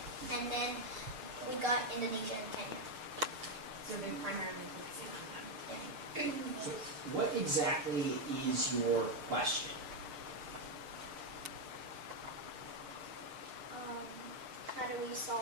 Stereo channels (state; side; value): late; left; 6.6 ms